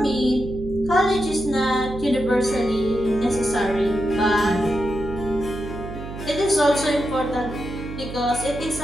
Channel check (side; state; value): right; noise; hum, 10 dB below the sound